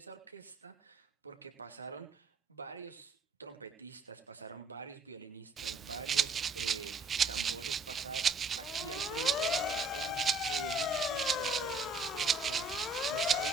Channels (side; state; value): left; quieter; 3.0 dB